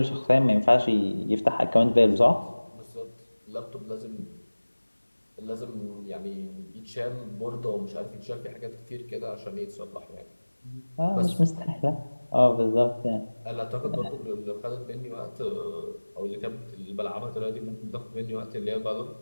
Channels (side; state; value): both; inverted; correlation -1.00